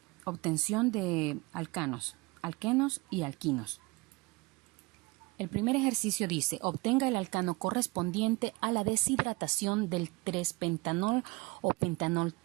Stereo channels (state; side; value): quieter; left; 24.8 dB